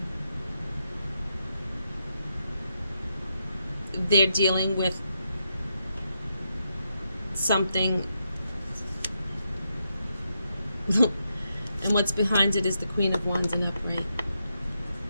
They're dealing with something, and what's behind it is the Queen of Wands in upright,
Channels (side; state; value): both; inverted; correlation -0.83